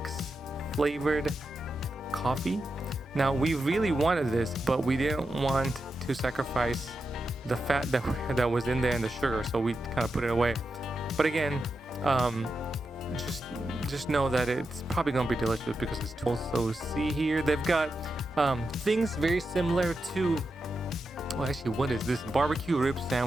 flavored coffee. Now we really wanted this, but we didn't want to sacrifice the fat that was in there and the sugar, so we kind of put it away. But again, just know that it's probably gonna be delicious because it's also, see here they've got things very similar to, well, actually, what is this? Barbecue rib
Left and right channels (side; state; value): both; normal; correlation 0.88